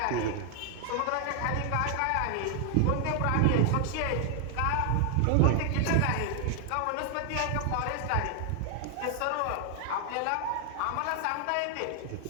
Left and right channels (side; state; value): both; different; correlation 0.00